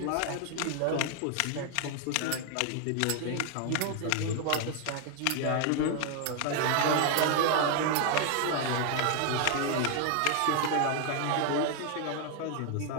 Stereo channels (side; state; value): both; different; correlation 0.00